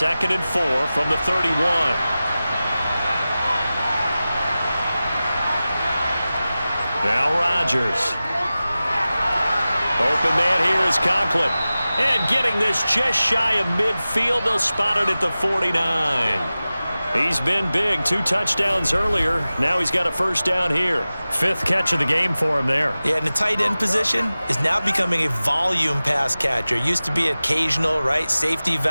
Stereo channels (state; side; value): inverted; both; correlation -0.96